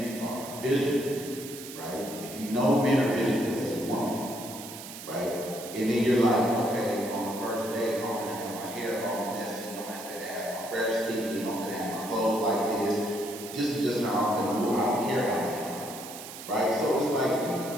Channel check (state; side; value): noise; right; hiss, 12 dB below the sound